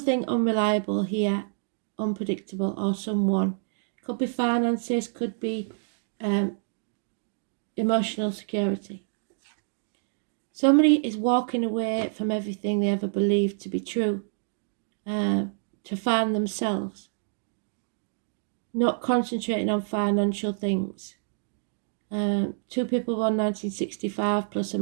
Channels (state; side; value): silent; left; digital silence